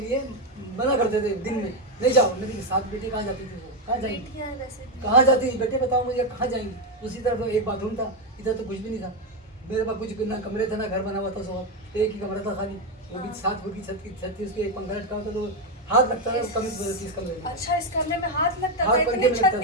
लिए मना करते थे दिन में, नहीं जाओ। मेरी 7 बेटी कहाँ जाती थी, वो कहाँ जाएंगी, कहाँ जाती थी बेटे बताओ मुझे, कहाँ जाएंगी। उसी तरफ एक बाथरूम था, इधर तो कुछ भी नहीं था। मेरे पास कुछ ना कमरे थे ना घर बना हुआ था, सो एक ही कमरा था खाली, वो भी 7 फुट की छत थी, उसके एक पंखा लटका होता तो हाथ लगता था कम इस कमरे में। अच्छा, इस कमरे में हाथ लगता था? हाथ इतनी छत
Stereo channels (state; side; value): normal; both; correlation 0.06